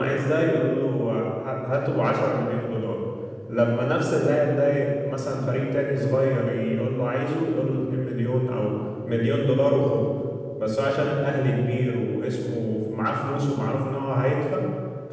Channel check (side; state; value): both; identical; correlation 1.00